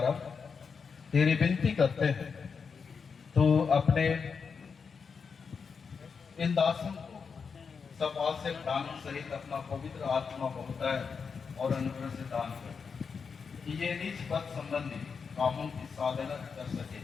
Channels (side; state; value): right; quieter; 5.7 dB